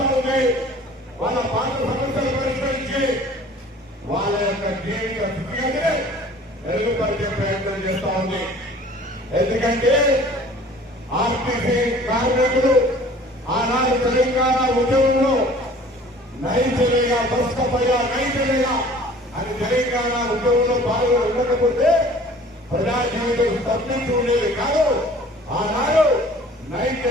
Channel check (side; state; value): both; normal; correlation 0.48